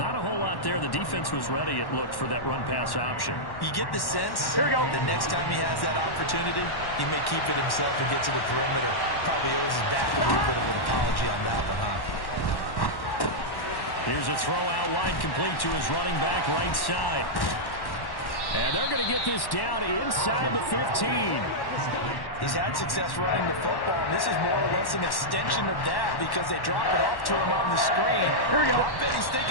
a whole lot there. The defense was ready, it looked, for that run-pass option. You get the sense Here we go. the next time he has that opportunity, he may keep it himself and get to the perimeter. Probably owes his back a little bit of an apology on that one, huh? Here's a throw out wide, complete to his running back right side. And they're going to get this down inside the 15. He's had success running the football, and this is more or less an extension of that because they drop it off to him on the screen. Here we go. I bet he's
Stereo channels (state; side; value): late; right; 1.1 ms